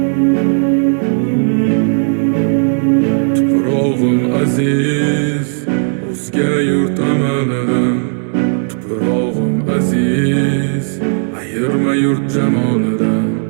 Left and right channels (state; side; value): silent; left; digital silence